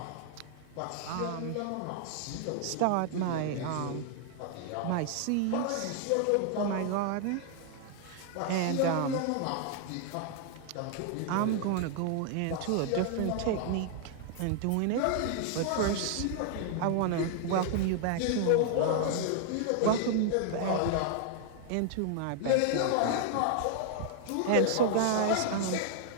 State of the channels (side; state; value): both; different; correlation 0.00